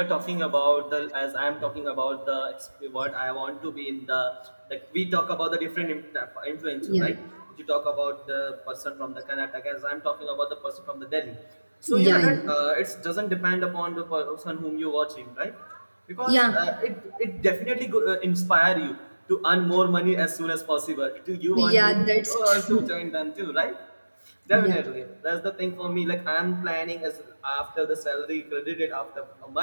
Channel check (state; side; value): inverted; both; correlation -1.00